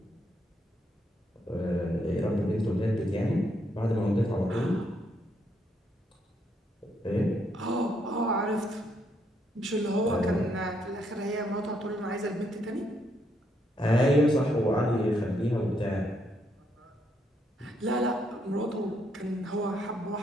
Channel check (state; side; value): normal; both; correlation 0.75